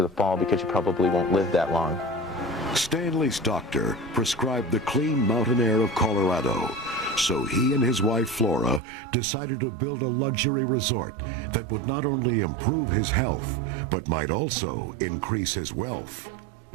the fall because you probably won't live that long. Stanley's doctor prescribed the clean mountain air of Colorado, so he and his wife Flora decided to build a luxury resort that would not only improve his health, but might also increase his wealth.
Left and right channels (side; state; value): left; drops out; at 8.8 s